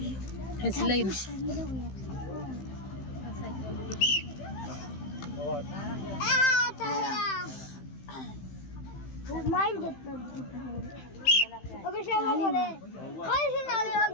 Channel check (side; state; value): right; late; 15 ms